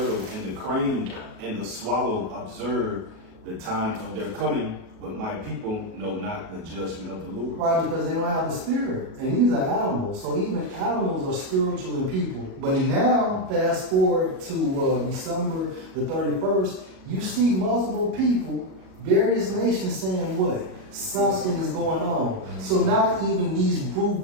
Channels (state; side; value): late; left; 37 ms